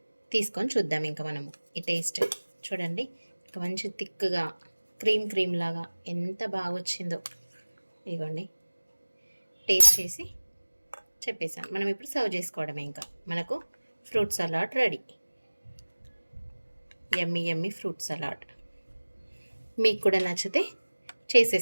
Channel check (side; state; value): both; inverted; correlation -1.00